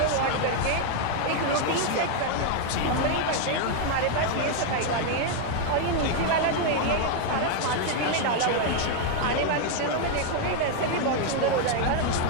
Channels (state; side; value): different; both; correlation 0.00